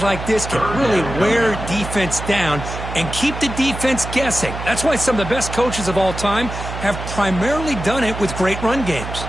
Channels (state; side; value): noise; right; hum, 8 dB below the sound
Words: like this can really wear defense down and keep the defense guessing. That's why some of the best coaches of all time have primarily done it with great run games.